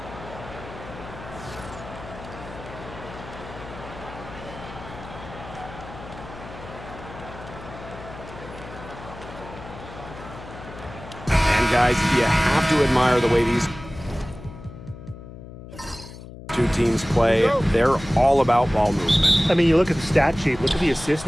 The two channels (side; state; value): left; noise; hum, 14 dB below the sound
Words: And guys, you have to admire the way these two teams play. They're all about ball movement. I mean, you look at the stat sheet, look at the assist